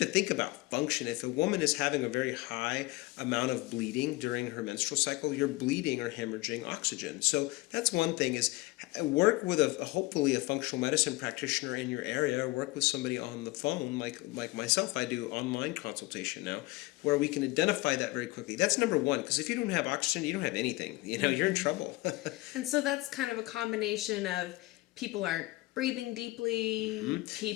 think about function. If a woman is having a very high amount of bleeding during her menstrual cycle, you're bleeding or hemorrhaging oxygen. So that's one thing, is work with hopefully a functional medicine practitioner in your area, or work with somebody on the phone like myself. I do online consultation now, where we can identify that very quickly. That's number one, because if you don't have oxygen, you don't have anything. You're in trouble. And so that's kind of a combination of people aren't breathing deeply,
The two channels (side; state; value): right; quieter; 20.9 dB